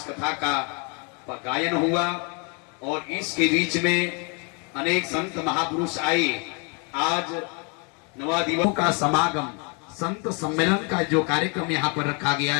कथा का गायन हुआ और इसके बीच में अनेक संत महापुरुष आए। आज 9 दिवसों का समागम, संत सम्मेलन का जो कार्यक्रम यहाँ पर रखा गया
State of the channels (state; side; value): quieter; right; 34.6 dB